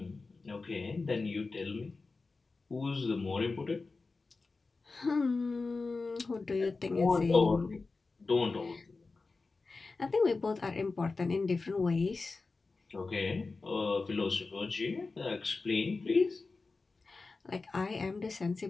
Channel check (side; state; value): right; quieter; 3.9 dB